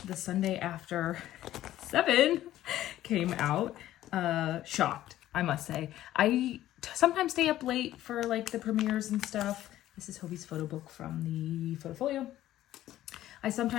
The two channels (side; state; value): right; quieter; 13.7 dB